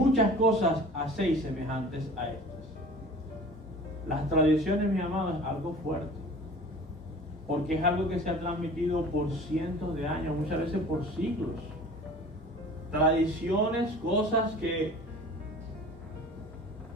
cosas hacéis semejantes a estas. Las tradiciones, mi amado, es algo fuerte, porque es algo que se ha transmitido por cientos de años, muchas veces por siglos. Tradiciones, cosas que,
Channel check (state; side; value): normal; both; correlation 0.43